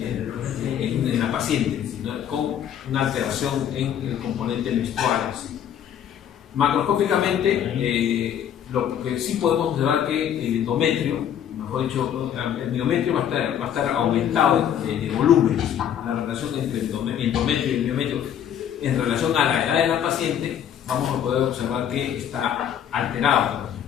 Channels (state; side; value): quieter; right; 9.5 dB